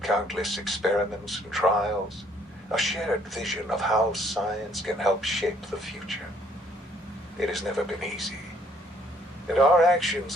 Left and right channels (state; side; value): normal; both; correlation 0.64